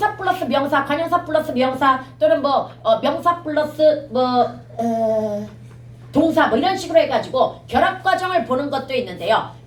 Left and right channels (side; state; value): both; identical; correlation 1.00